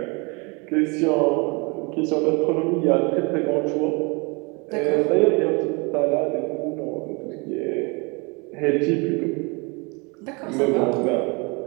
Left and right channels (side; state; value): left; quieter; 30.0 dB